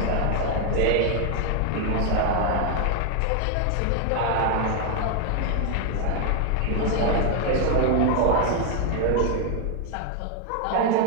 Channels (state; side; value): different; both; correlation 0.00